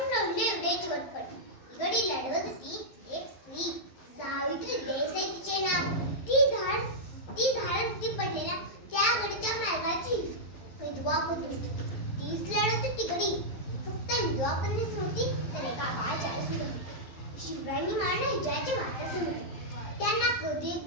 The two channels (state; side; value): late; right; 11 ms